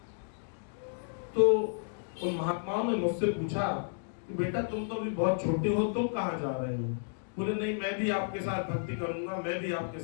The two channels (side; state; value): right; silent; digital silence